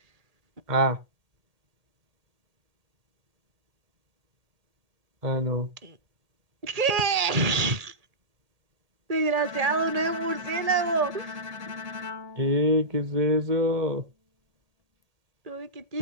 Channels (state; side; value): late; left; 1.8 ms